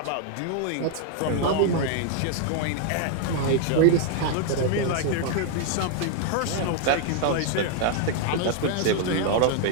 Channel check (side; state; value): both; different; correlation 0.00